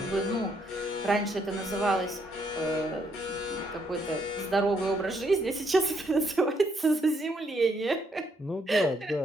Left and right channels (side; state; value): both; normal; correlation 0.73